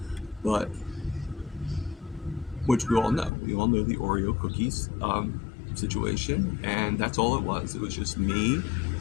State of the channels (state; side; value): drops out; right; at 3.3 s